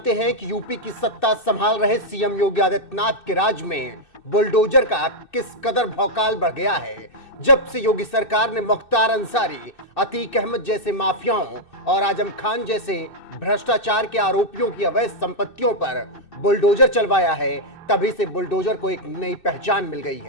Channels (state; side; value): late; right; 2.6 ms